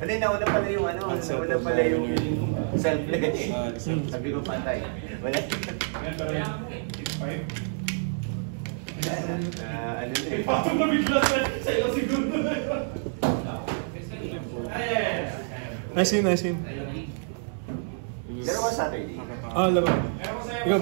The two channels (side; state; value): left; silent; digital silence